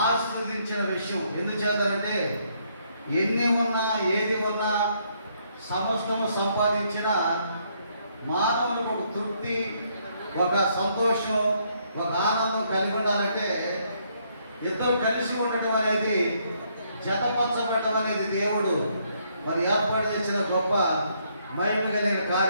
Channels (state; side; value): inverted; both; correlation -0.71